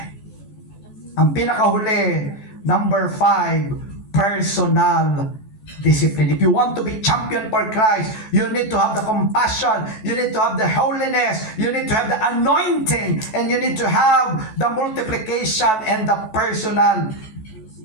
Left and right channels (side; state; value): right; late; 14 ms